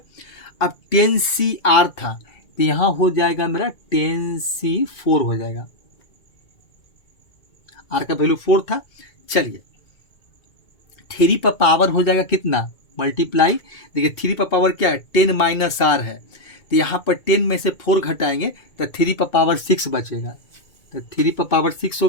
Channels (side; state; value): right; late; 2.2 ms